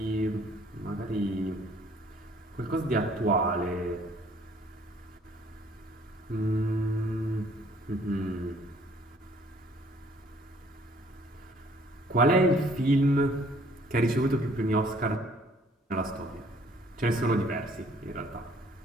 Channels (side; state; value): both; normal; correlation 0.60